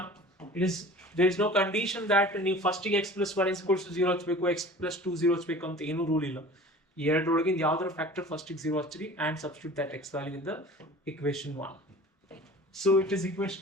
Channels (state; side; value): normal; both; correlation 0.42